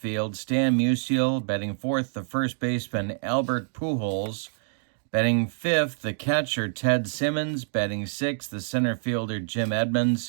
Stan Musial. Batting fourth, the first baseman, Albert Pujols. Batting fifth, the catcher, Ted Simmons. Batting sixth, the center fielder, Jim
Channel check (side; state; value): left; silent; digital silence